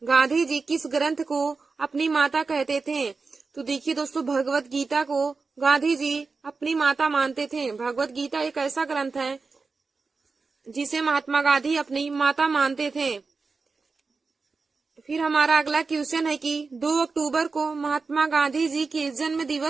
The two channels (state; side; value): quieter; left; 4.4 dB